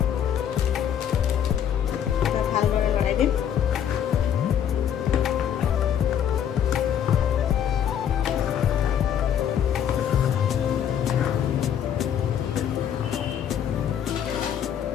ভালদৰে লৰাই দিম।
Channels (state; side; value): quieter; right; 9.2 dB